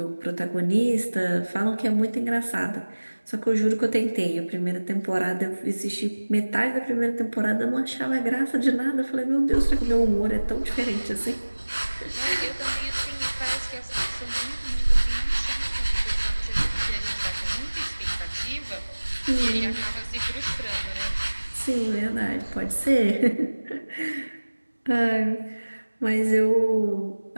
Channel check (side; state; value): both; inverted; correlation -1.00